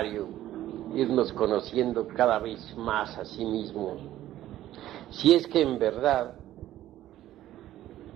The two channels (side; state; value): left; quieter; 13.6 dB